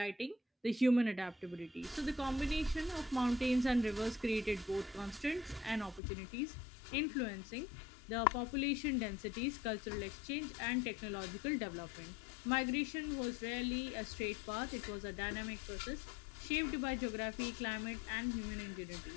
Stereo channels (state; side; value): drops out; right; at 6.0 s